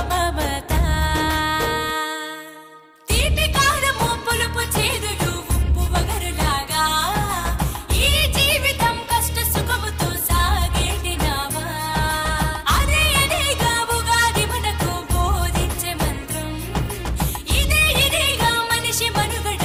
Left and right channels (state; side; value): identical; both; correlation 1.00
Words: మమత. తీపి కారము పులుపు చేదులు ఉప్పు వగరులాగా ఈ జీవితం కష్ట సుఖముతో సాగేటి నావా. అదే అదేగా ఉగాది మనకు బోధించే మంత్రం. ఇదేగా మనిషి